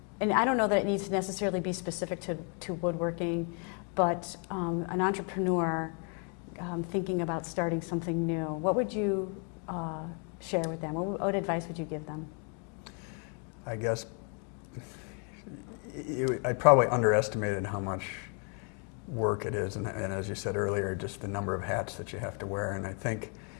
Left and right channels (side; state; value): right; quieter; 39.6 dB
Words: and I don't know that it needs to necessarily be specific to woodworking, but an entrepreneur thinking about starting something new, what would you share with them? What advice would you give them? I guess I probably underestimated how much work it is, and as you said earlier, just the number of hats that you have to wear. And I think